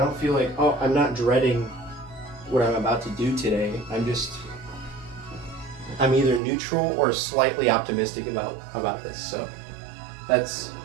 feel like, oh, I'm not dreading what I'm about to do today. I'm either neutral or slightly optimistic about this. So that's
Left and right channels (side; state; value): left; drops out; at 6.4 s